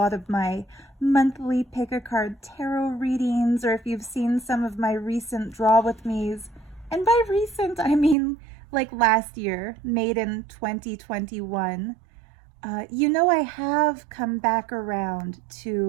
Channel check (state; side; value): drops out; left; at 8.2 s